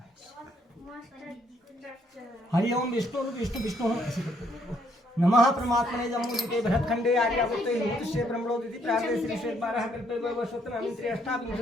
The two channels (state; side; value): normal; both; correlation 0.70